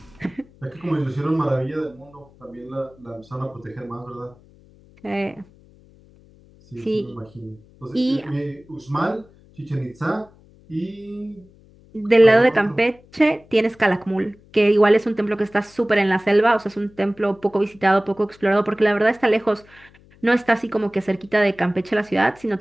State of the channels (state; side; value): noise; left; hum, 27 dB below the sound